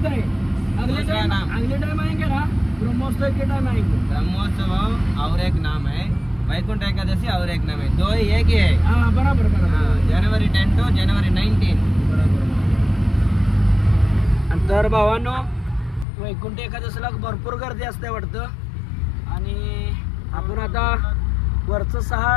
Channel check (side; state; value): right; drops out; at 16.1 s